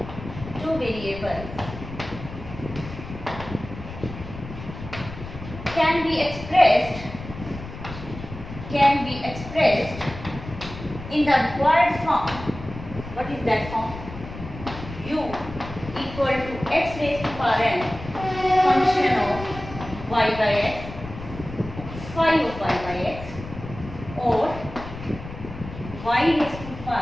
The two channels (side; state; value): left; noise; rumble, 12 dB below the sound